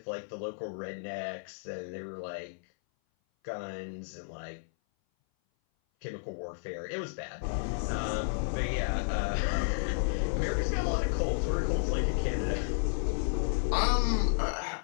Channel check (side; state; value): right; silent; 56 dB below the other